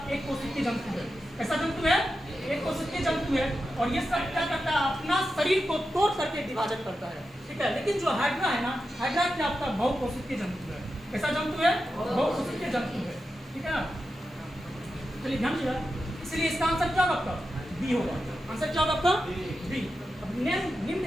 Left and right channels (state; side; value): normal; both; correlation 0.90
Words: एक कोशिकीय जंतु है, ऐसा जंतु है एक कोशिकीय जंतु है। और ये सब क्या करता है अपना शरीर को तोड़ करके विभाजन करता है, ठीक है। लेकिन जो हाइड्रा है ना हाइड्रा क्या आपका बहुकोशिकीय जंतु है, कैसा जंतु है बहुकोशिकीय जंतु है, ठीक है ना। चलिए ध्यान दीजिएगा, इसलिए इसका आंसर क्या होगा आपका बी होगा, आंसर क्या होगा आपका बी।